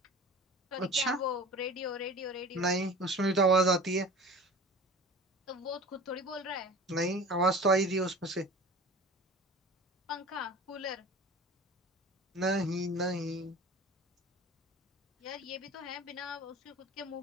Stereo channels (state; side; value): normal; both; correlation 0.40